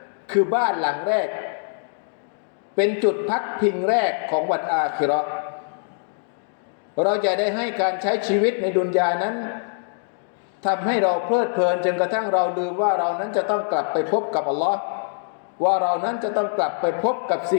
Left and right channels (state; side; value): silent; right; digital silence